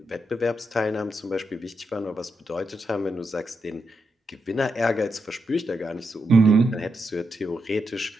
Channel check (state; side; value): normal; both; correlation 0.84